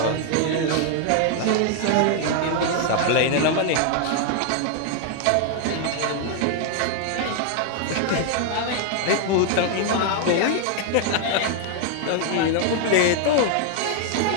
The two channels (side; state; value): both; different; correlation 0.00